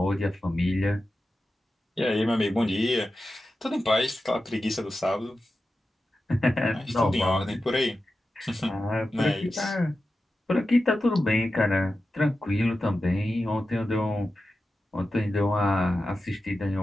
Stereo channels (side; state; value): both; normal; correlation 0.92